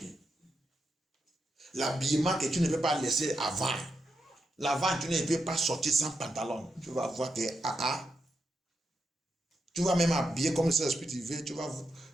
L'habillement que tu ne peux pas laisser avant. L'avant, tu ne peux pas sortir sans pantalon. Tu vas voir que Tu vas même habiller comme le Saint-Esprit te veut.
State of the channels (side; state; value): both; normal; correlation 0.85